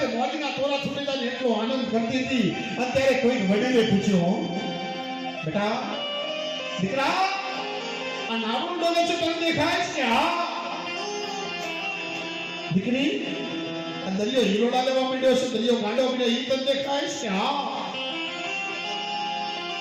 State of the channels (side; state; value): both; identical; correlation 1.00